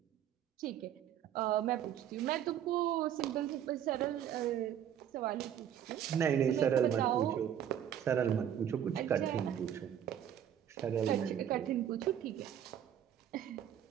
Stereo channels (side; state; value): left; quieter; 9.9 dB